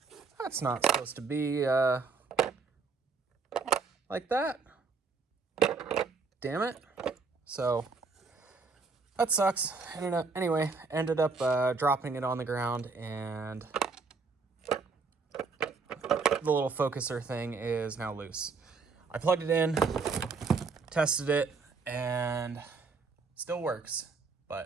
That's not supposed to be like that. Damn it. So that sucks. Anyway, ended up dropping it on the ground, and the little focuser thing is now loose. I plugged it in, tested it, and still works,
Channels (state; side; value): quieter; left; 4.6 dB